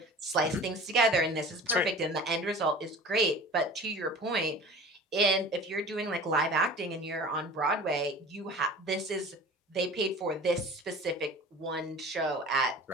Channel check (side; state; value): both; normal; correlation 0.40